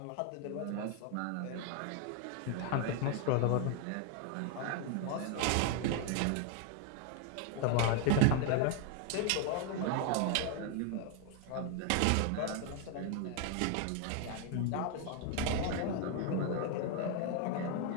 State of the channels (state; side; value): different; both; correlation 0.00